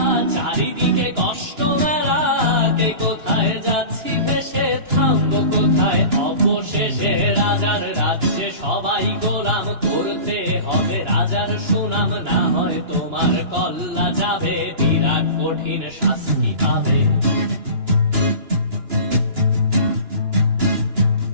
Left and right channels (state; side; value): late; left; 2.9 ms